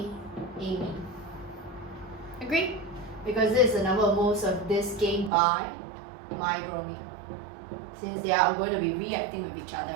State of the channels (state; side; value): drops out; left; at 5.3 s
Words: Agree? Because this is the number of moles of this gained by my bromine. Since they are going to be reacting with each other,